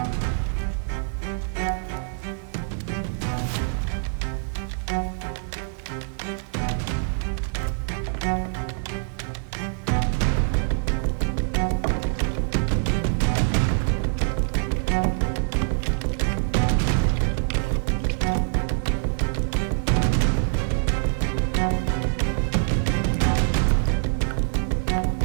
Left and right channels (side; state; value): left; silent; digital silence